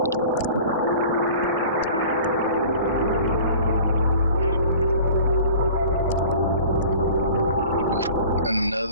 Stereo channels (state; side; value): inverted; both; correlation -0.44